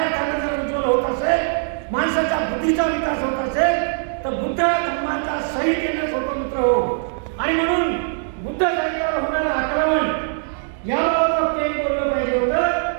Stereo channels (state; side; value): silent; left; digital silence